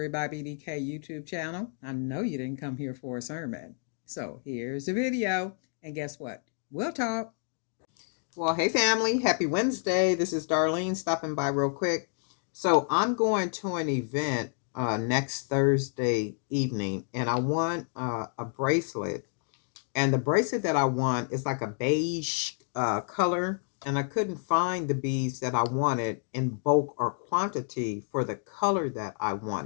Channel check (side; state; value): right; silent; 57 dB below the other